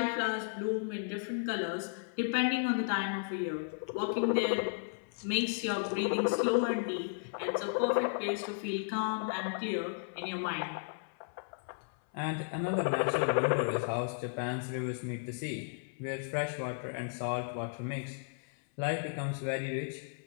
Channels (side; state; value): right; silent; 55 dB below the other